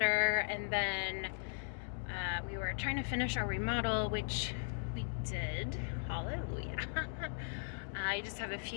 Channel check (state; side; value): silent; right; digital silence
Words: and then we were trying to finish our remodel, which we did. Hallelujah. I just have a